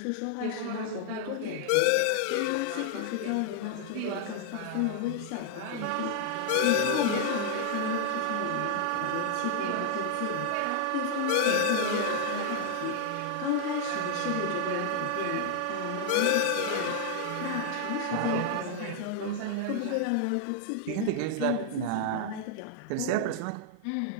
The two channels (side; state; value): both; different; correlation 0.00